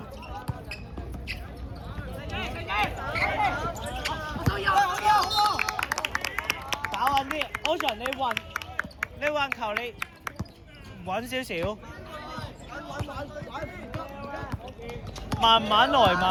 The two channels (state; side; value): identical; both; correlation 1.00